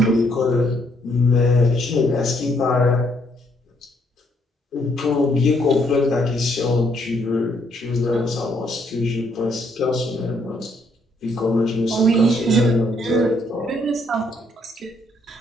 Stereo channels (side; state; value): both; normal; correlation 0.70